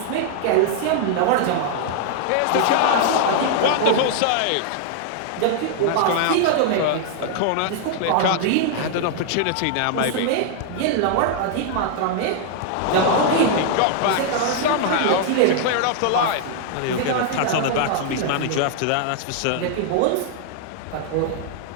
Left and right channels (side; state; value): both; different; correlation -0.01